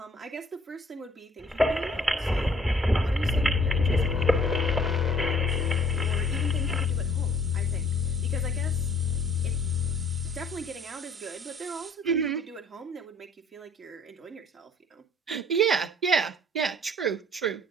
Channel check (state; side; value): normal; both; correlation 0.58